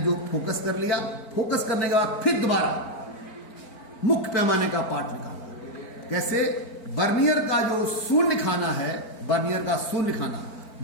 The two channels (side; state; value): right; late; 4.4 ms